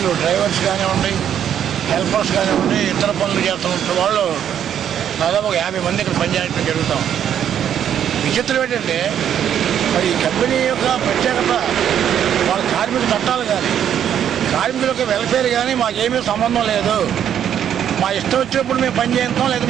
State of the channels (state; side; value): quieter; left; 9.5 dB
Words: డ్రైవర్స్ కానివ్వండి, హెల్పర్స్ కానివ్వండి, ఇతర పనులు చేస్తున్న వాళ్ళు దాదాపు 50 మంది ఇక్కడ పనిచేయడం జరుగుతాం. విచిత్రం ఏంటంటే మరి ఈ కంపెనీ యొక్క ప్రత్యేకత వాళ్ళ కార్మిక చట్టాలు కానీ, కార్మికుల యొక్క వెల్ఫేర్ కానీ మాకేమీ సంబంధం లేదు, మా ఇష్టం వచ్చినప్పుడు మేము పని చేస్తాం లేదా